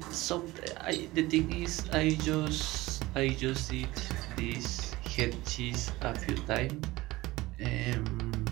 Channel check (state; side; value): quieter; left; 19.3 dB